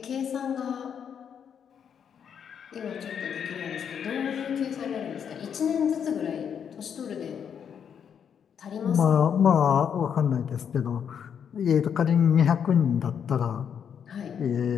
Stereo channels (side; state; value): right; quieter; 7.8 dB